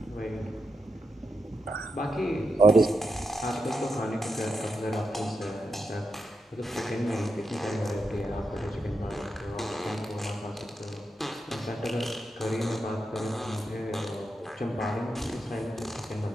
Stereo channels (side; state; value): both; normal; correlation 0.86